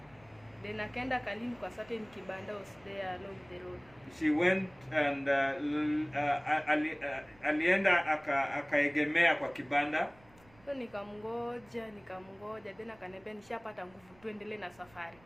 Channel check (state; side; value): noise; right; rumble, 28 dB below the sound